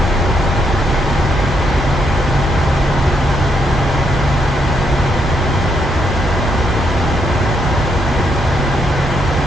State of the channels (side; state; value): both; normal; correlation 0.76